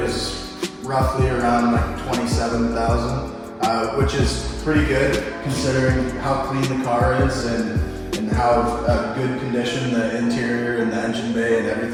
was roughly around like $27,000, which is pretty good considering how clean the car is and how good condition the interior and the engine bay and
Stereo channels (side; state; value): both; identical; correlation 1.00